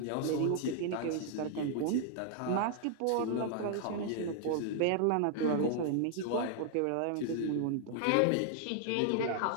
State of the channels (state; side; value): different; both; correlation 0.00